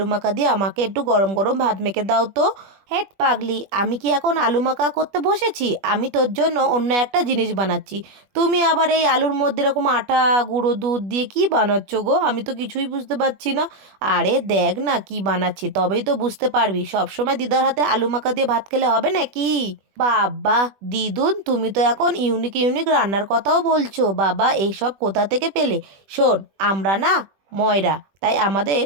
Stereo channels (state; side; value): late; left; 21 ms